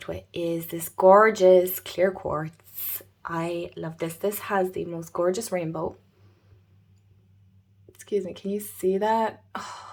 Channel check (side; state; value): both; identical; correlation 1.00